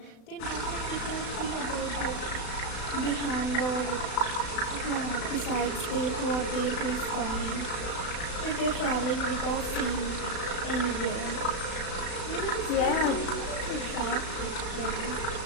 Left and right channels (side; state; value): right; late; 36 ms